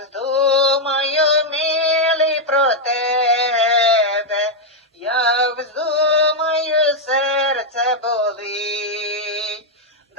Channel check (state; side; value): normal; both; correlation -0.01